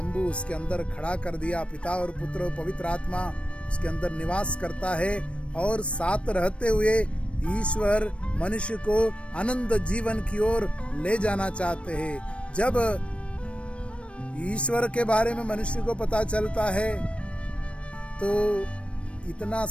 उसके अंदर खड़ा कर दिया। पिता और पुत्र और पवित्र आत्मा उसके अंदर निवास करता है, और साथ रहते हुए ईश्वर मनुष्य को अनंत जीवन की ओर ले जाना चाहते हैं। जब ईश्वर के बारे में मनुष्य को पता चलता है तो इतना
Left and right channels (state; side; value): late; right; 0.061 ms